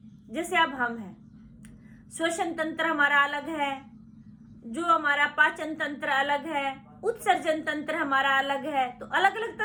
जैसे अब हम हैं, श्वसन तंत्र हमारा अलग है, जो हमारा पाचन तंत्र अलग है, उत्सर्जन तंत्र हमारा अलग है, तो अलग अलग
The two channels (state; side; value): identical; both; correlation 1.00